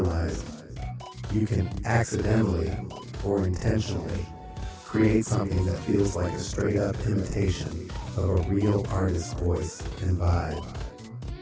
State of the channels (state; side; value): identical; both; correlation 1.00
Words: you can accidentally or intentionally create something that feels like a straight-up imitation of a real artist's voice and vibe.